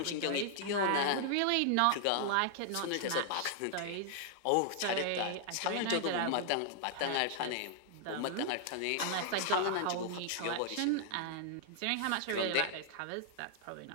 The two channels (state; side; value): different; both; correlation -0.01